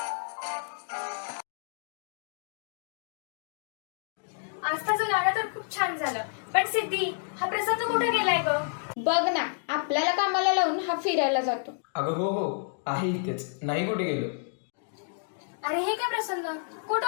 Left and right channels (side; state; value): right; silent; digital silence